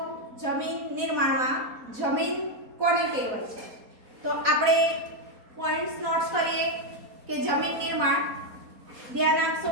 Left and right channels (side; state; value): left; late; 4.2 ms